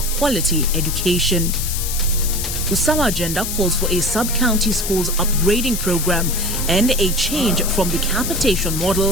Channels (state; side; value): noise; left; hiss, 4 dB below the sound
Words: quality education? Usawa agenda calls for a sub-county schools upgrading program and a change from the capitation